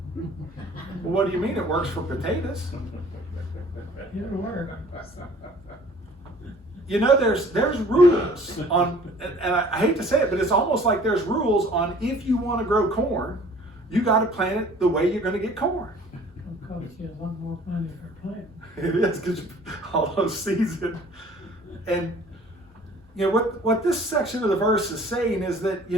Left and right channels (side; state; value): both; normal; correlation 0.51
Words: Well, what do you mean it works for potatoes? It'll work. You know, there's rules on, and I hate to say it, but it's almost like there's rules on if you want to grow corn, you got to plant it the way you're going to get corn. It'll cost you a lot more money for planting. It is, because all those seeds. And you know what this section of the verse is saying is that,